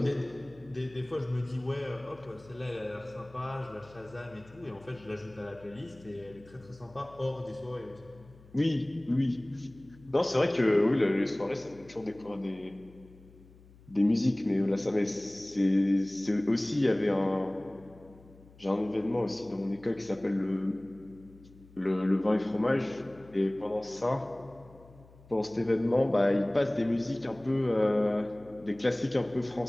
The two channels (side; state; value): left; noise; hum, 24 dB below the sound